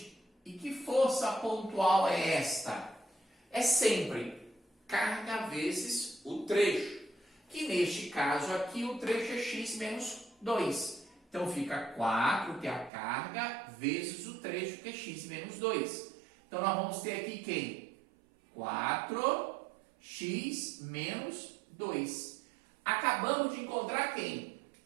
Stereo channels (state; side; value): drops out; left; at 12.9 s